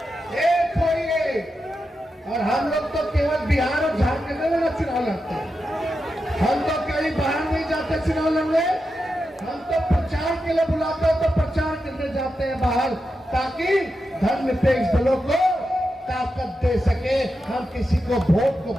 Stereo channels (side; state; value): both; normal; correlation 0.88